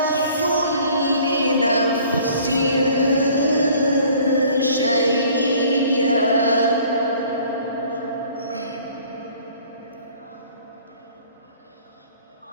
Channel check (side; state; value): both; inverted; correlation -0.53